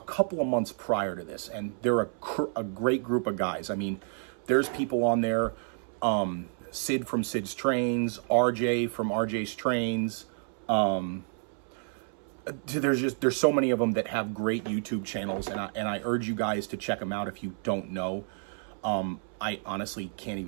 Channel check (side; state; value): left; silent; 58 dB below the other